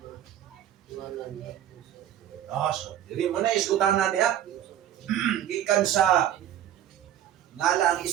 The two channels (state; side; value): quieter; left; 11.3 dB